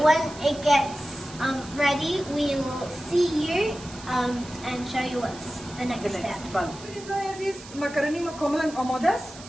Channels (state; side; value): noise; right; hiss, 17 dB below the sound